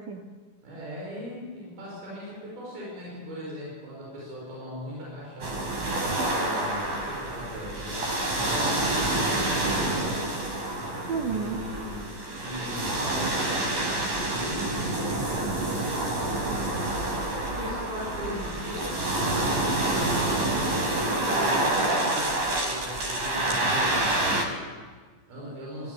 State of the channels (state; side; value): late; left; 12 ms